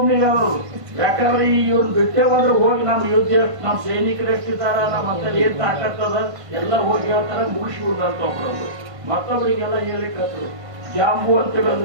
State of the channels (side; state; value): left; late; 1.5 ms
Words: ಅವರು. ಯಾಕಂದ್ರೆ ಇವ್ರನ್ನ ಬಿಟ್ಟೆ ಬಂದ್ರೆ ಹೋಗಿ ನಮ್ಮ ಯುದ್ಧ ನಮ್ಮ ಸೈನಿಕರು ಎಷ್ಟಿದ್ದಾರ, ನಮ್ಮ ಅಂತ ಏನ್ ತಾಕತ್ತದ ಎಲ್ಲ ಹೋಗಿ ಹೇಳ್ತಾರ ಮುಗಿಸ್ಬಿಡ್ದು ಅಂತ ಒಬ್ಬರು. ಮತ್ತೊಬ್ಬರಿಗೆಲ್ಲ ಹೇಳಿಕತ್ರು ಜಾಂಬು ಅಂತ